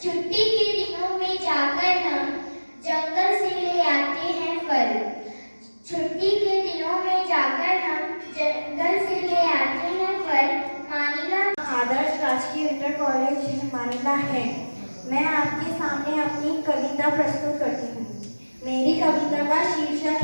छुट्टी के दिनों में जाकर हम जंगल से ले आते हैं फल। छुट्टी के दिनों में जाकर हम जंगल से ले आते हैं फल। मानिला आदर्श राजकीय इंटर कॉलेज मानिला है। मैं आपके सामने अपनी कविता प्रस्तुत करती हूँ। मेरी कविता का शीर्षक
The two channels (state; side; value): inverted; both; correlation -1.00